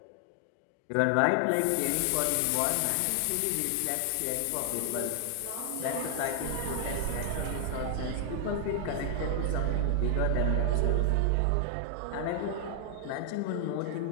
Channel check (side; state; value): both; different; correlation 0.00